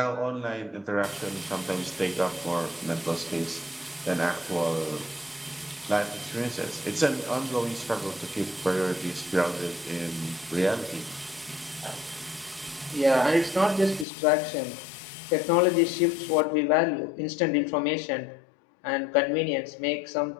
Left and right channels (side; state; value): right; drops out; at 14.1 s